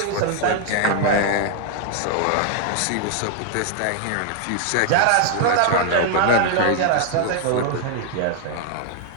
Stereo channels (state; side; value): different; both; correlation 0.00